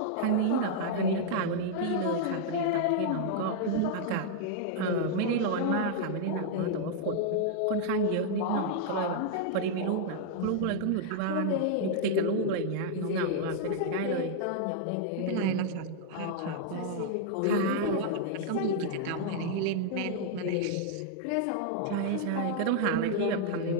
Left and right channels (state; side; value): different; both; correlation -0.01